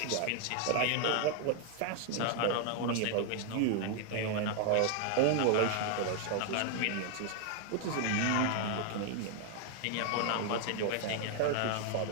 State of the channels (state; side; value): different; both; correlation 0.00